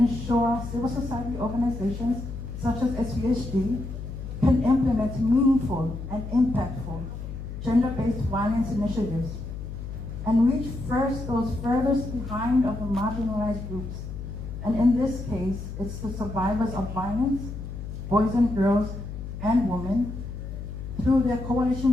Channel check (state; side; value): noise; left; hum, 8 dB below the sound